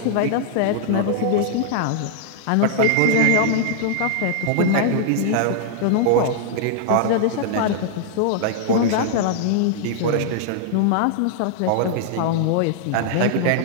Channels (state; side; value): different; both; correlation -0.01